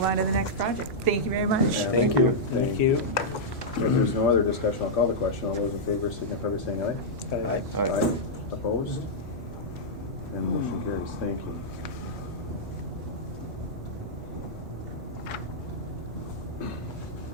on to the next project. Thank you very much. Yeah, Thank you. Thank you. If there's no other discussion, I'll call the question. All those in favor signify by saying aye. Aye. Aye. Opposed? And motion carries. Thank you.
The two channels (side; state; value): both; normal; correlation -0.09